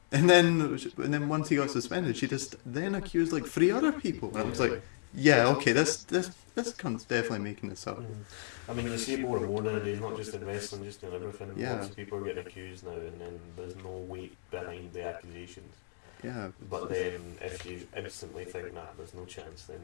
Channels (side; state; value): right; silent; digital silence